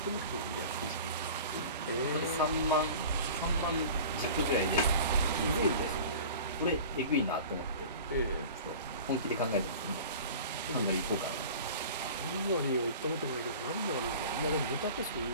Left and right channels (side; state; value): both; inverted; correlation -0.40